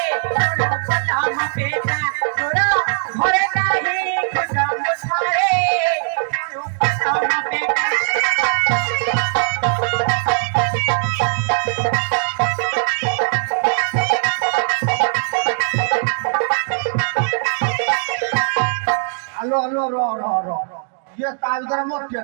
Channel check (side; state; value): left; silent; 66 dB below the other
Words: চলো পলা মপেটা তোরা ঘরে নাহি খুদা মুছারে চলো পলা মপেটা আলো আলো র র র ইয়ে তার দ্বারা মোর